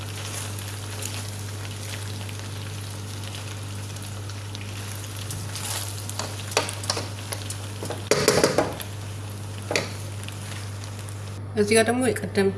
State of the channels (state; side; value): identical; both; correlation 1.00